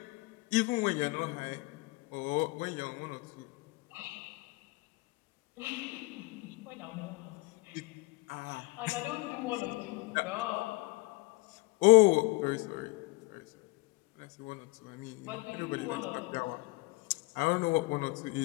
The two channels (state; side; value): quieter; right; 23.9 dB